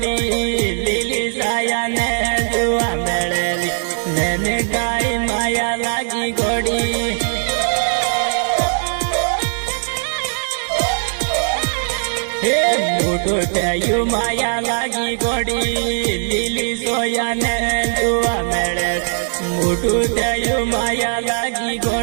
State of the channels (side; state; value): left; silent; digital silence